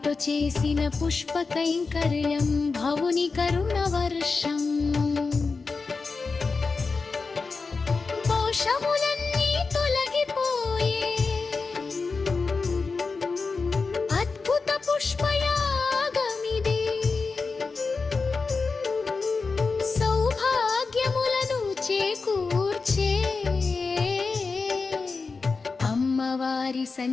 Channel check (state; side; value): quieter; right; 4.4 dB